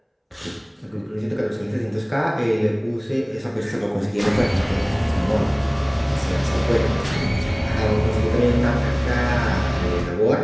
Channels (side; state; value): both; identical; correlation 1.00